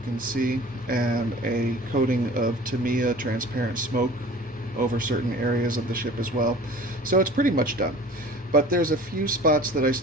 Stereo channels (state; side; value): normal; both; correlation 0.44